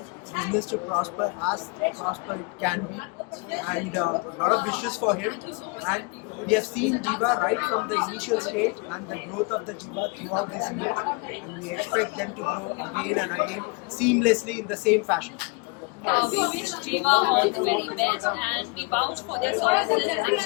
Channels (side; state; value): right; quieter; 30.4 dB